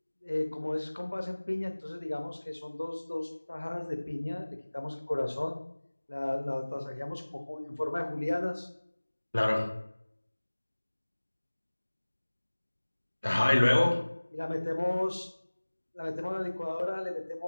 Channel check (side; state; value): both; inverted; correlation -1.00